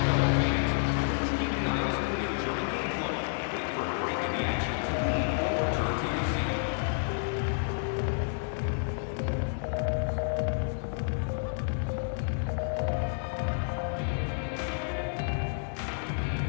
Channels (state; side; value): silent; right; digital silence